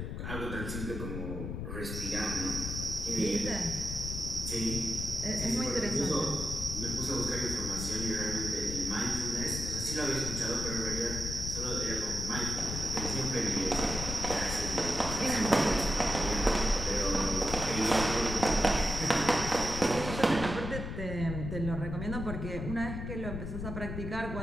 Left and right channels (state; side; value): noise; left; rumble, 5 dB below the sound